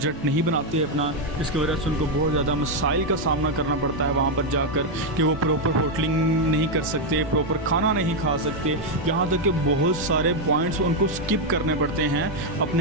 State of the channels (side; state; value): both; normal; correlation 0.02